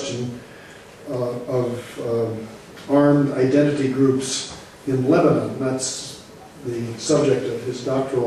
of armed identity groups in Lebanon. That's the subject of his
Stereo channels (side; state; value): both; identical; correlation 1.00